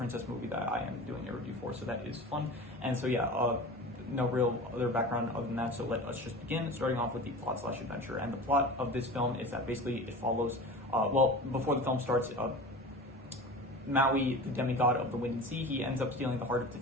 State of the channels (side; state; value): both; normal; correlation 0.34